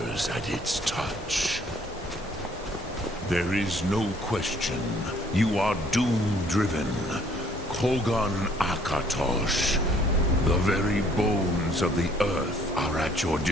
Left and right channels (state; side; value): normal; both; correlation 0.61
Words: at its touch. There is no question. You are doom-driven. Kogan Akatosh. The very bones of the earth are at your